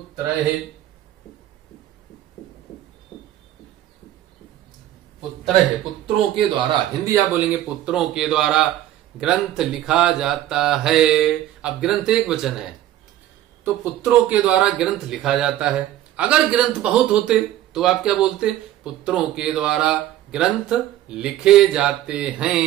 पुत्रैः, पुत्रों के द्वारा, हिंदी आप बोलेंगे पुत्रों के द्वारा ग्रंथ लिखा जाता है। अब ग्रंथ एक वचन है तो पुत्रों के द्वारा ग्रंथ लिखा जाता है। अगर ग्रंथ बहुत होते तो आप क्या बोलते, पुत्रों के द्वारा ग्रंथ लिखे जाते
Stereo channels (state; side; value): quieter; left; 13.2 dB